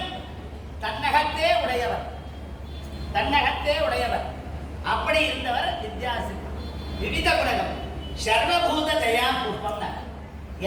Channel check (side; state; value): both; identical; correlation 1.00